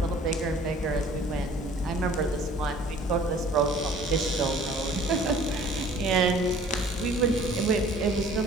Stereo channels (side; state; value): both; normal; correlation 0.51